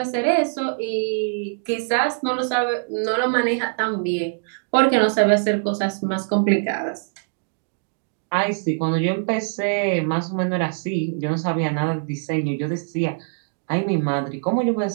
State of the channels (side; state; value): left; silent; digital silence